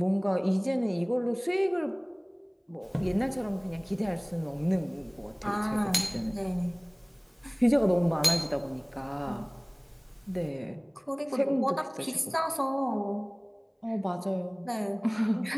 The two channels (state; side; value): identical; both; correlation 1.00